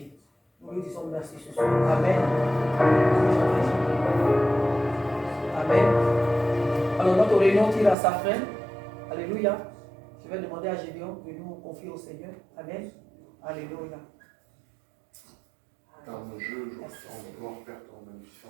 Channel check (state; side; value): drops out; left; at 8.0 s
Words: Nous lui disons merci ce soir. Amen. Amen. Alors notre réunion tire à sa fin. Alléluia. Je vais demander à Gédéon de nous confier au Seigneur. Amen. Alléluia. Dans nos jeux, je ressens gloire, Père, ton